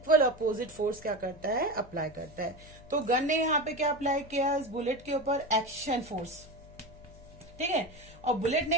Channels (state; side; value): noise; left; hum, 21 dB below the sound